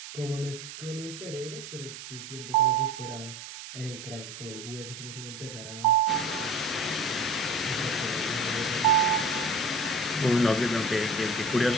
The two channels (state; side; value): noise; right; hiss, 12 dB below the sound